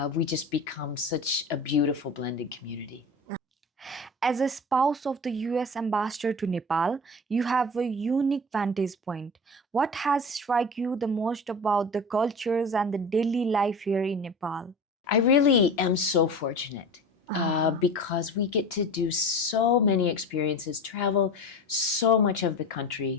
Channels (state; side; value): normal; both; correlation 0.32